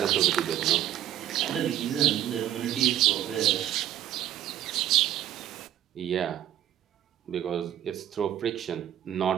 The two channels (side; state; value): left; quieter; 11.9 dB